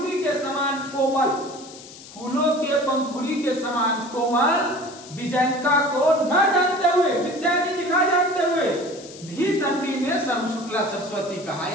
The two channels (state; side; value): noise; left; hiss, 17 dB below the sound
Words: के समान कोमल, फूलों के पंखुड़ी के समान कोमल विजयंका को न जानते हुए, विद्यार्थी की न जानते हुए भी दंडी ने सर्व शुक्ला सरस्वती कहा,